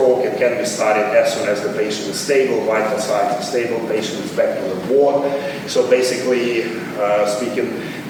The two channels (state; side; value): identical; both; correlation 1.00